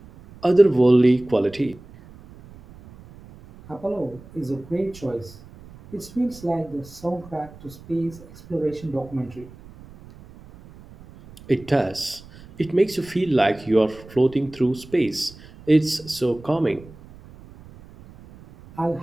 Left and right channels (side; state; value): right; noise; rumble, 20 dB below the sound